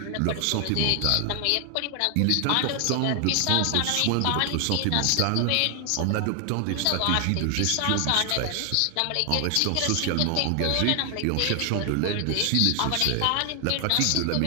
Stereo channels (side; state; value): both; different; correlation 0.00